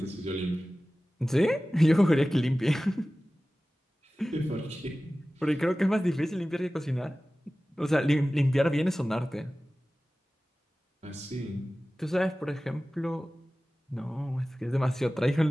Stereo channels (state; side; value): normal; both; correlation 0.97